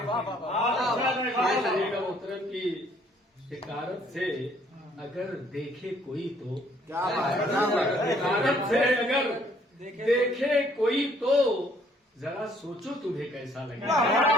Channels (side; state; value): both; normal; correlation 0.63